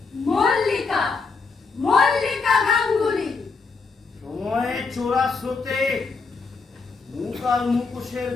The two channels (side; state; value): right; quieter; 4.5 dB